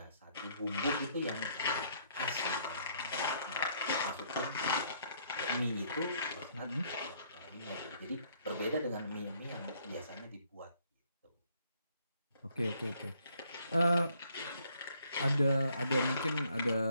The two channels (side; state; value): both; inverted; correlation -0.67